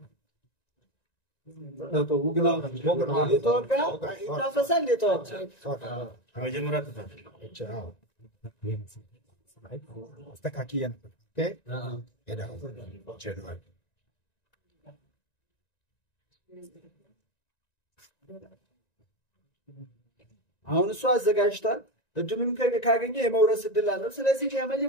ይታፈሳል። አስተካክዬ ነበር። አሁን እሱ አዘጋጅቷል። እድሉን ካገኘ የመውረስ እድል አለው። ስለዚህ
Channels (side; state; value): right; late; 1.9 ms